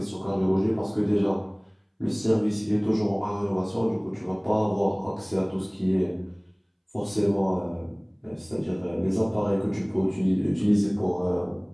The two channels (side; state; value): both; identical; correlation 1.00